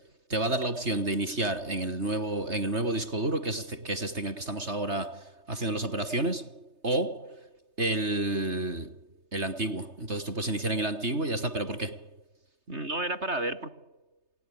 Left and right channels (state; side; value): late; left; 3.3 ms